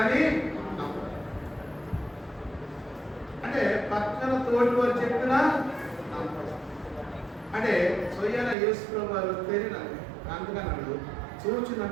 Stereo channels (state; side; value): drops out; left; at 8.6 s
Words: అంటే పక్కన తోటి వారు చెప్పినా అంటే స్వయాన యేసు ప్రభు వారు తెలియదు. అందుకన్నాడు, చూచి